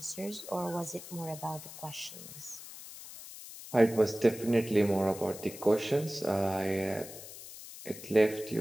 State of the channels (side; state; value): left; noise; hiss, 14 dB below the sound